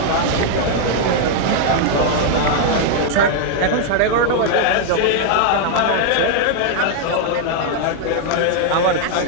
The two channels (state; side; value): different; both; correlation 0.00